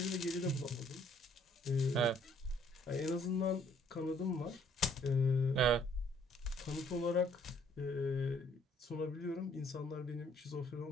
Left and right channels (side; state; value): both; normal; correlation 0.63